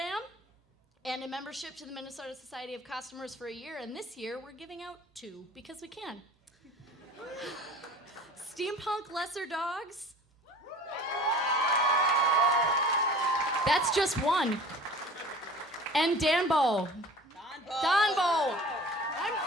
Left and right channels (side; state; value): both; normal; correlation 0.43